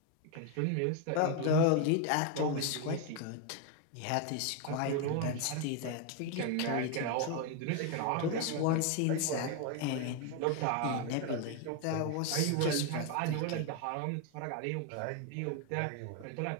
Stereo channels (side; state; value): both; different; correlation 0.01